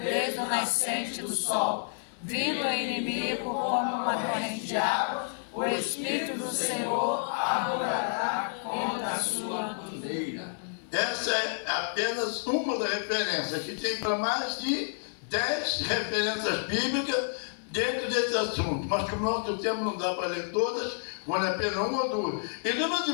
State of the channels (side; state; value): right; silent; digital silence